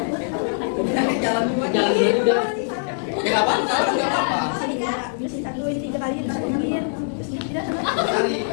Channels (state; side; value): silent; right; 64 dB below the other